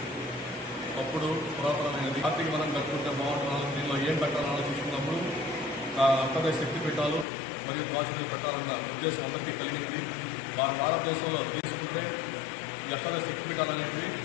అప్పుడు పురాతనమైనది. ఆర్థిక మనం కట్టుకుంటే బాగుంటున్నాను. దీనిలో ఏం పెట్టాలని ఆలోచించుకున్నప్పుడు అంతర్దేశ శక్తి పీఠాలు మరియు ద్వాసనలు పెట్టాలన్న ఉద్దేశం అందరికీ కలిగింది. భారతదేశంలో తీసుకుంటే ఈ అష్టాదశ శక్తి పీఠాలు అనేటివి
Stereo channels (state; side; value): drops out; right; at 7.2 s